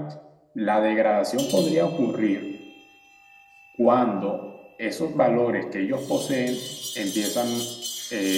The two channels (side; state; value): both; identical; correlation 1.00